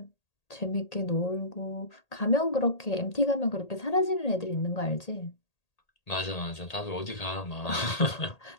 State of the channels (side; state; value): right; late; 1.8 ms